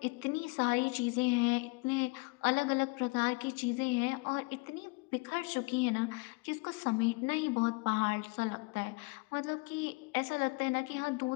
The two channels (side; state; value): right; quieter; 26.9 dB